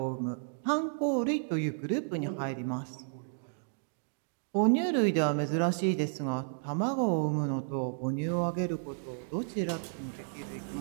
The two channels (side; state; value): left; silent; digital silence